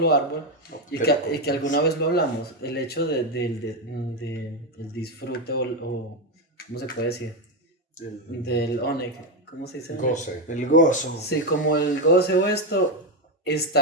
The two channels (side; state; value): both; normal; correlation 0.09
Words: árbol, y que alguna vez lo hablamos, el hecho el disfrute o, ¿cómo se puede decir? Del oneg, ¿cómo se dice? Goce. El gozo. Sí, como el goce o esto